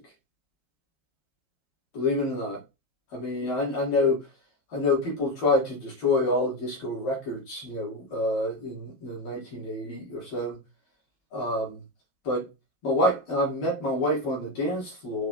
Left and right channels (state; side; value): late; right; 10 ms